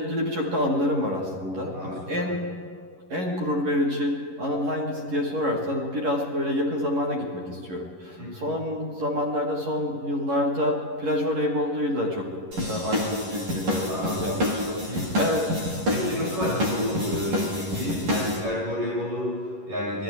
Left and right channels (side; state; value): left; late; 11 ms